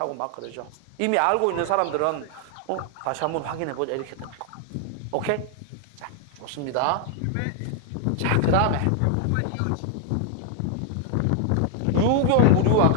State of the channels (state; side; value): different; both; correlation 0.00